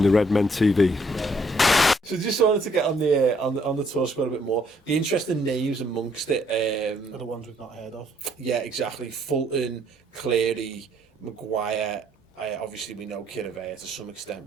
the Redmen TV. So just wanted to get on the tour squad a bit more. The interesting names amongst it are the ones we've not heard of. Yeah, exactly. Fulton, Cleary, Maguire. Obviously, we know Kiravea to some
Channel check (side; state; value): both; normal; correlation 0.67